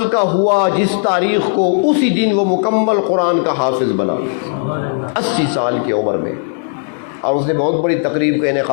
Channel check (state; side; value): silent; right; 58 dB below the other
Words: کا ہوا، جس تاریخ کو، اسی دن وہ مکمل قرآن کا حافظ بنا، 80 سال کی عمر میں، اور اس نے بہت بڑی تقریب کا